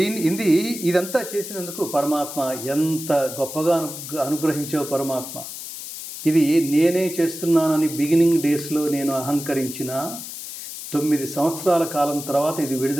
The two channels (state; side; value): noise; left; hiss, 10 dB below the sound